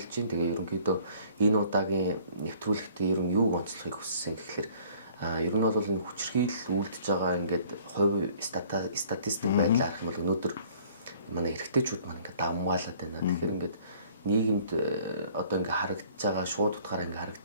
байна. Тэгээ ерөнхийдөө энэ удаагийн нэвтрүүлэгтээ ер нь юуг онцлохыг хүссэн гэхээр ер нь бол энэ хүчирхийлэл үлдэж байгаа ингээд хувь статистик байдлаар харах юм бол өнөөдөр манай эрэгтэйчүүд маань ингээд давмгаалаад байна. Тэгэхээр ингээд нийгэмд одоо ингээд харагдаж байгаа шууд утгаараа ингээд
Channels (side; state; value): both; inverted; correlation -0.56